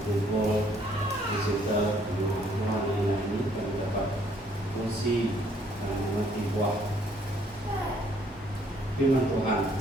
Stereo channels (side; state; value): both; normal; correlation 0.65